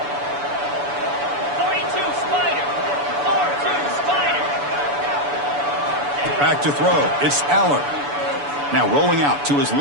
42 Spider. 4-2 Spider. Back to throw. It's Aller. Now rolling out to his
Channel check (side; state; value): left; late; 7.0 ms